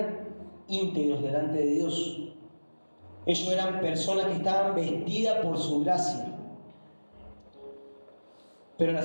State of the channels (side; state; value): both; inverted; correlation -1.00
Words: íntegros delante de Dios. Ellos eran personas que estaban vestidas por su gracia. Pero la